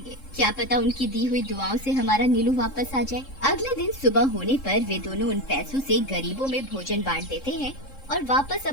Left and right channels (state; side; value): late; right; 3.7 ms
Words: क्या पता उनकी दी हुई दुआओं से हमारा नीलू वापस आ जाए। अगले दिन सुबह होने पर वे दोनों उन पैसों से गरीबों में भोजन बांट देते हैं और वापस